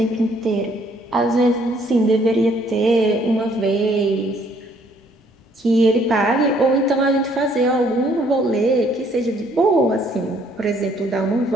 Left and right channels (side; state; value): both; normal; correlation 0.64